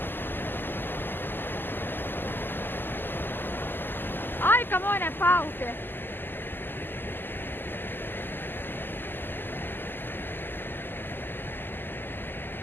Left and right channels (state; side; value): late; right; 0.094 ms